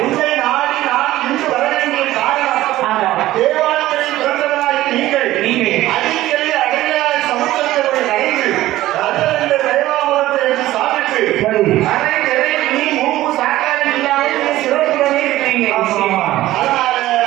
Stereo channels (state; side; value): quieter; left; 15.5 dB